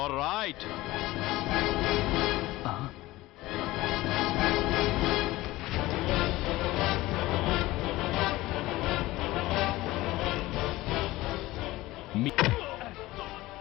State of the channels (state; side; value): quieter; right; 18.4 dB